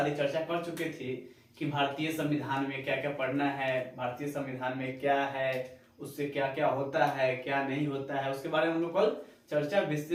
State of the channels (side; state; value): both; identical; correlation 1.00